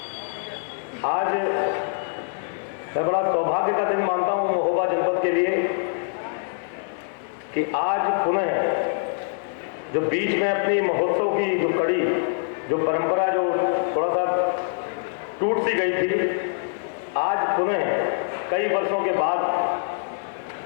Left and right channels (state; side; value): silent; right; 62 dB below the other